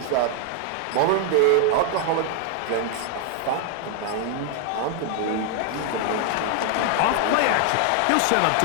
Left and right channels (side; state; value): both; different; correlation 0.00